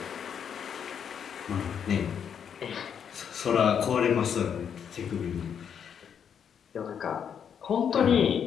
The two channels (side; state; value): right; quieter; 7.9 dB